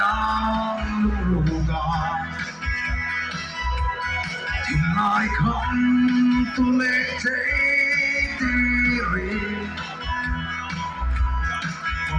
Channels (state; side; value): identical; both; correlation 1.00